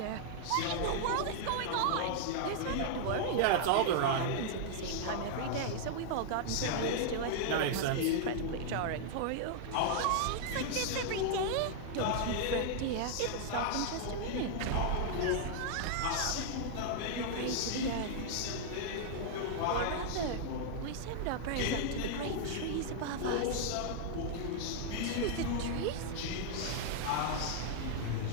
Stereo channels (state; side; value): different; both; correlation -0.01